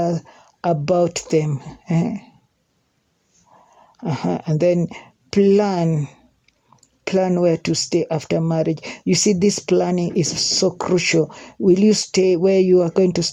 about them. And then plan where to stay after marriage. You see, this planning is so crucial. Will you stay where you are going to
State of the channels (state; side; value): identical; both; correlation 1.00